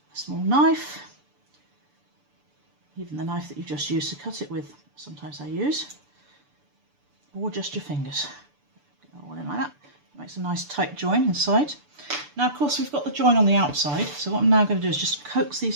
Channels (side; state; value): left; late; 6.9 ms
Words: a small knife, even the knife that you just used to cut it with, sometimes I use, or just your fingers. Get that all in like that. It makes a nice tight join inside. Now, of course, we've got the join on the outside, so what I'm now going to do is just coax